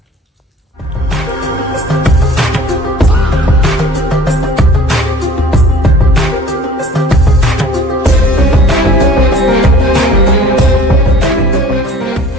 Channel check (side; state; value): both; normal; correlation 0.48